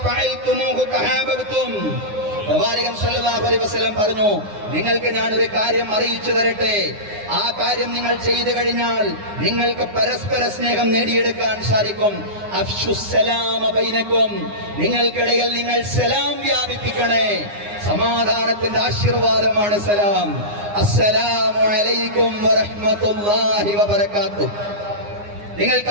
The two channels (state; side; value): late; left; 9.7 ms